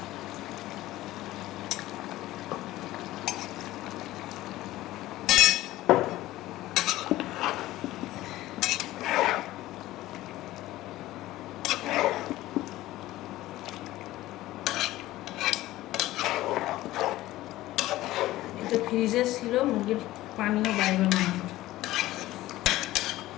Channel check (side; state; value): right; quieter; 16.3 dB